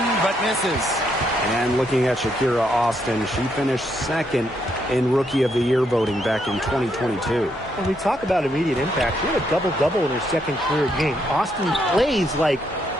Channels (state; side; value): normal; both; correlation 0.76